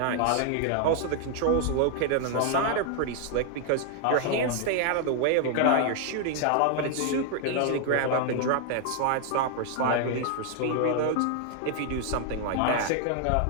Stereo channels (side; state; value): both; different; correlation 0.00